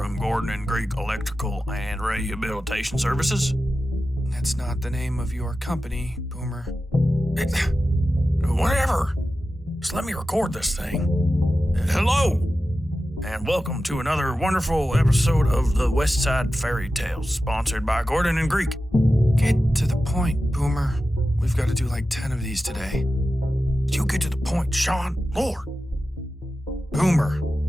Gordon and Greek Electrical and Rehabilitation Services. That's not the name of your company, Boomer. Whatever. Just let me record this thing. Hello, and welcome to another wonderful episode of the Westside Fairytales, sponsored by Gordon and Greek. Get to the point, Boomer. We've got to do like 10 of these today. You get to the point, Sean. Lord. Boomer.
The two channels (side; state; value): both; normal; correlation 0.93